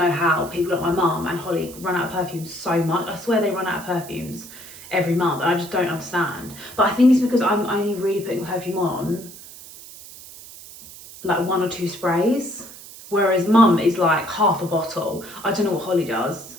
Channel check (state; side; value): noise; right; hiss, 17 dB below the sound